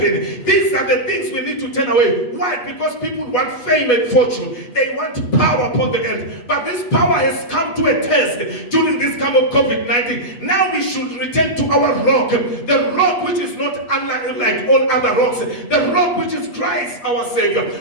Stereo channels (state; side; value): late; right; 8.2 ms